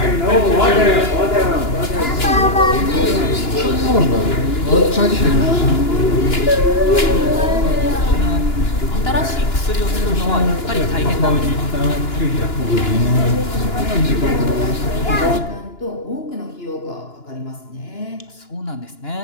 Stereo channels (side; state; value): right; late; 2.9 ms